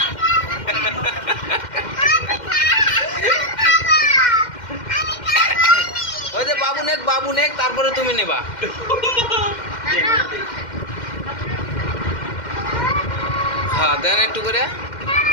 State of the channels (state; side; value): late; right; 2.1 ms